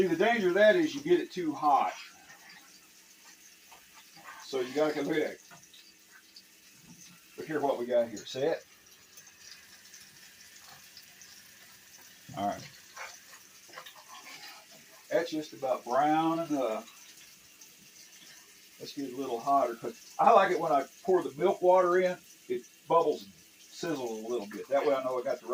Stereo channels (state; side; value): identical; both; correlation 1.00